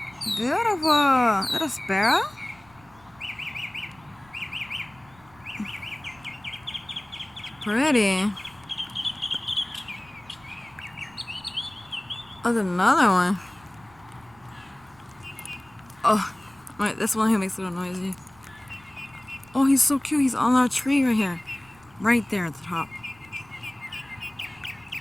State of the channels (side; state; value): right; noise; rumble, 27 dB below the sound